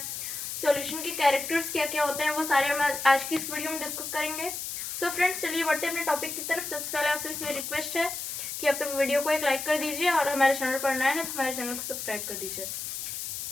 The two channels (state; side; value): noise; left; hiss, 5 dB below the sound